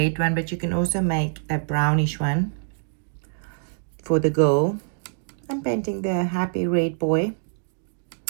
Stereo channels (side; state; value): left; silent; digital silence